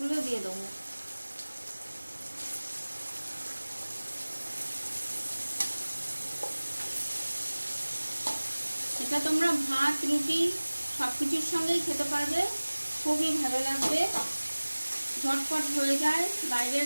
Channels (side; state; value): both; inverted; correlation -1.00